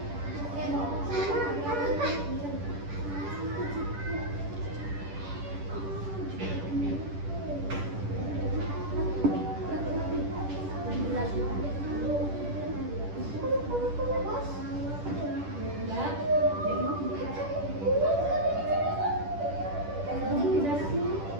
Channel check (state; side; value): late; left; 10 ms